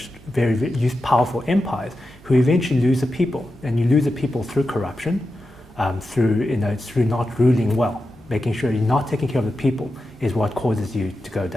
very, very powerful empires who eventually lose the people. And you lose the people through corruption, through not ruling well. Making sure you're not taking care of the people is what causes you to go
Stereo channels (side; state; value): both; normal; correlation 0.90